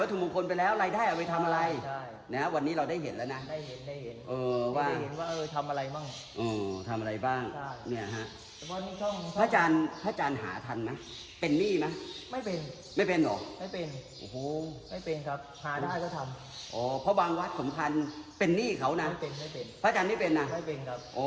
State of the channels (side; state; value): both; identical; correlation 1.00